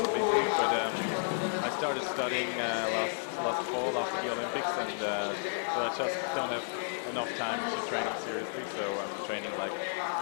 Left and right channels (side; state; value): right; silent; digital silence